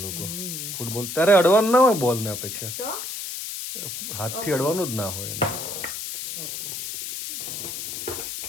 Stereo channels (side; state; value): left; noise; hiss, 6 dB below the sound